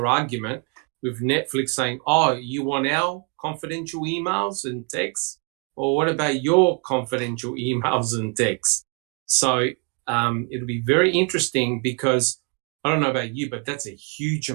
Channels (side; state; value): left; quieter; 33.6 dB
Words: argument with Netflix saying, oh, you want our confidential emails and texts? Or what about your confidential emails and texts? So it'll be very interesting because I don't know about you, but that's a huge